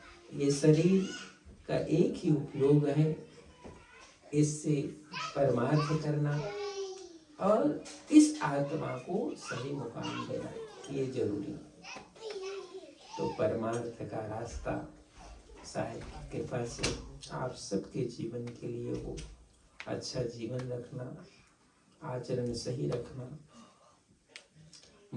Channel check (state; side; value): identical; both; correlation 1.00